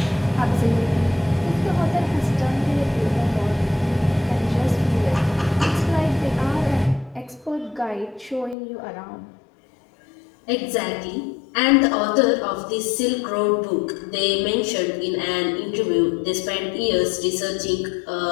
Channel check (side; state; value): right; drops out; at 8.6 s